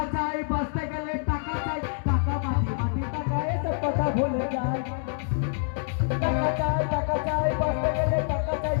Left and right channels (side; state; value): right; silent; 60 dB below the other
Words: চাই, বাঁচতে গেলে টাকা চাই। টাকা মাটি মাটি টাকা, এসব কথা ভুলে যান। টাকা চাই, বাঁচতে গেলে টাকা চাই।